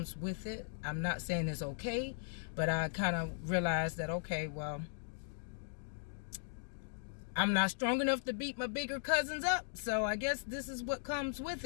with it. I'm not saying it's okay, but I kind of realized that, okay, well, I'm not strong enough to beat my bigger cousins up, so I guess this is what comes with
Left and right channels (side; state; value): right; silent; digital silence